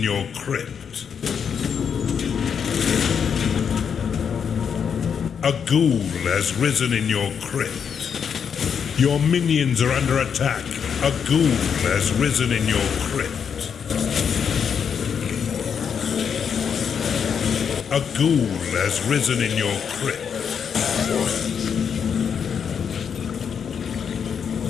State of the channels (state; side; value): quieter; right; 7.2 dB